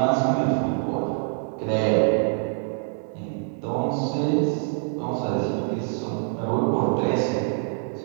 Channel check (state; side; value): quieter; left; 39.4 dB